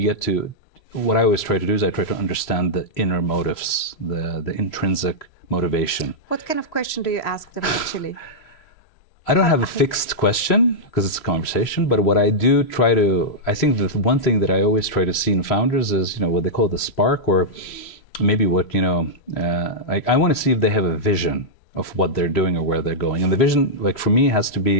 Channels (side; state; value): right; late; 2.9 ms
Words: get to, what I always try to do is I try to understand the inner motives, the intrinsic motivation. What kind of question do you ask them actually? I don't have a fixed question because it's a conversation, but what I do try to, I think the one thing that I always try to see in founders is, what they call the spark, or maybe what, I want to see if they have a vision of what they're doing or where they're going. And the vision, for me, has to